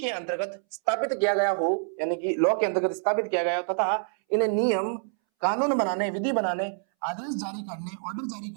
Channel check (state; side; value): silent; left; 60 dB below the other